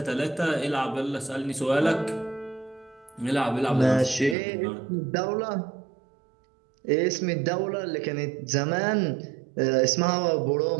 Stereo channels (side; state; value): left; drops out; at 4.4 s